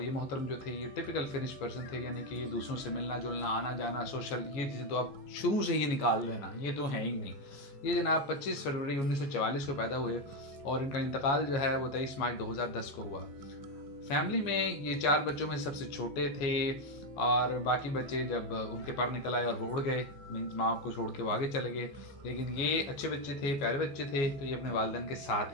ये मोहतरम जो थे ये टिपिकल फिनिश पर्सन थे, यानी कि दूसरों से मिलना जुलना, आना जाना, सोशल, ये चीज़ें तो आप शुरू से ही निकाल देना, ये तो है ही नहीं। ये जनाब 25 फरवरी 1944 को पैदा हुए और इनका इंतकाल जो है वो 23 मार्च 2010 को हुआ। फैमिली में ये 4 बच्चों में सबसे छोटे थे और बाकी बच्चे जब उनके पर निकल आए और वो उड़ गए, मीन्स माँ को छोड़ के वो आगे चले गए। लेकिन ये अच्छे बच्चे थे, प्यारे बच्चे थे, तो ये अपने वालिदैन के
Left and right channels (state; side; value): late; right; 14 ms